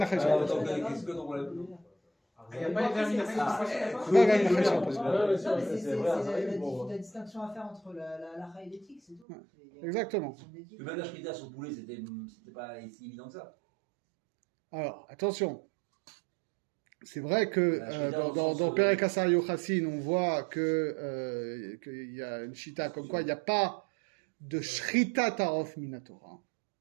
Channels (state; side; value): drops out; left; at 9.2 s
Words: Achai sur un poison. Qu'est-ce que ton problème? Il n'y a pas de vermin Achai pas vermin Achai sur un poison. C'est la distinction à faire entre la et l'éthique, c'est tout. Exactement. Même la shrita sur poulet, c'était pas si évident que ça. Alors, attention. C'est vrai que dans Perek Asar Yochassin, on voit qu'il y a une shita comme quoi il n'y a pas de shrita tarof minatora.